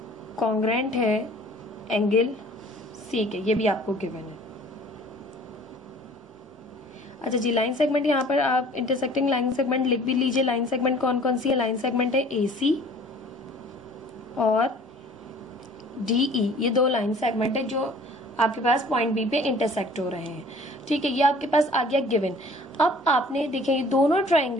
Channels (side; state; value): both; normal; correlation 0.50